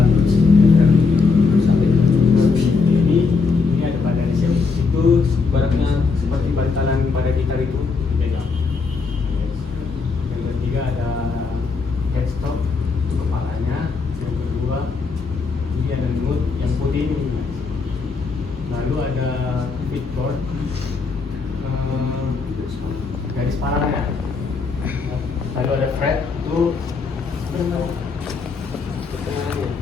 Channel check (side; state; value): right; quieter; 4.6 dB